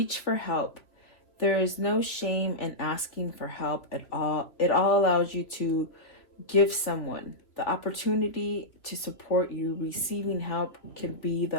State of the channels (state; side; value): late; right; 2.8 ms